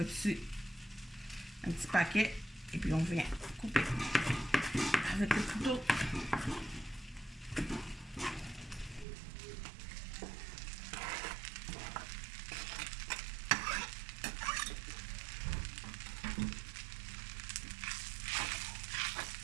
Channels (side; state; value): left; drops out; at 9.1 s